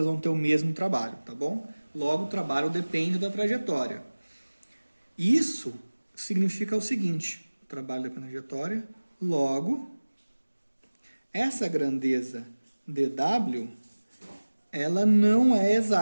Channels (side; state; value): both; inverted; correlation -1.00